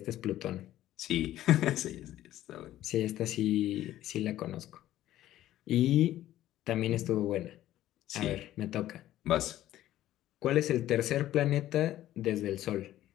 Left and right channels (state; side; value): quieter; right; 13.7 dB